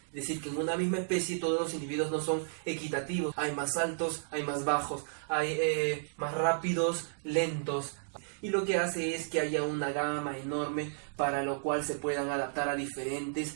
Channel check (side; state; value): left; silent; digital silence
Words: Es decir, que en una misma especie todos los individuos no son equitativos. Hay más altos, hay más bajos, hay más rápidos, lentos. Y lo que hace es que haya una gama enorme para lo cual se puedan adaptar a diferentes